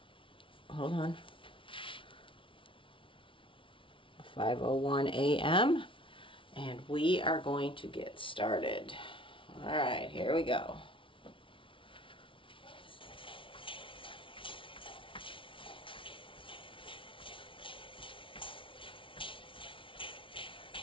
hold on, 5:01 a.m. And we are going to get started. All right, here we go.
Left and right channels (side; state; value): right; late; 0.25 ms